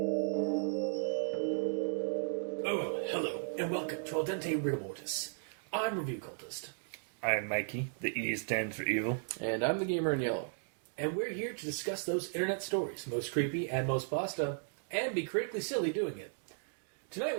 hello, and welcome to Dente Rigamortis. I'm Review Cultist. I'm Mikey, the E stands for evil. And I'm the gamer in yellow. And we're here to discuss those internet stories, most creepy and most pasta, and be critically silly doing it. Tonight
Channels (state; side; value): silent; left; digital silence